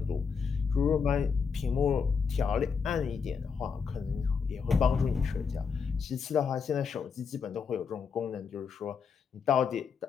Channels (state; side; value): quieter; right; 5.9 dB